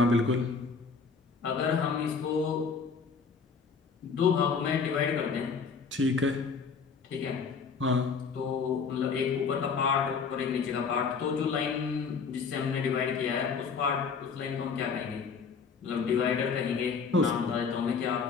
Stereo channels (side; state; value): right; quieter; 5.3 dB